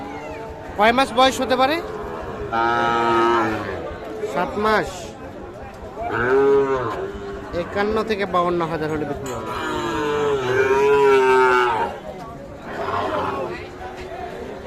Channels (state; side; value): identical; both; correlation 1.00